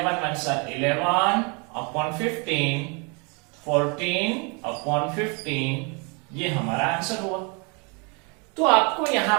1 साल 11 अपॉन 15, 14 अपॉन 15, ये हमारा आंसर हुआ। तो आपको यहां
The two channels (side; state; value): left; quieter; 33.3 dB